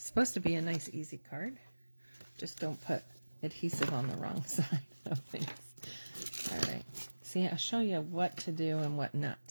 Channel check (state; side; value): inverted; both; correlation -1.00